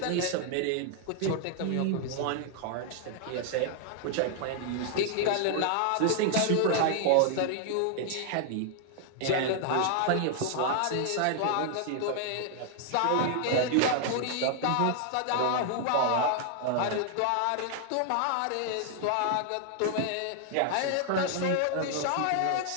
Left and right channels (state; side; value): different; both; correlation 0.00